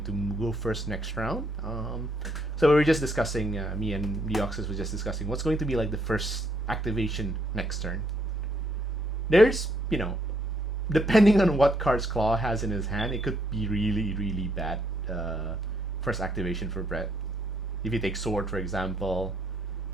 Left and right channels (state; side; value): normal; both; correlation 0.72